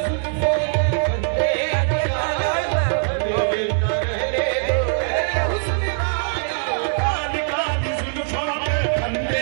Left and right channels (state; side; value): silent; left; 65 dB below the other